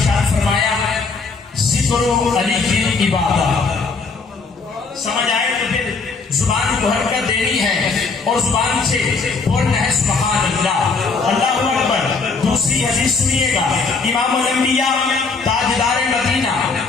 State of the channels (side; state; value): right; quieter; 4.4 dB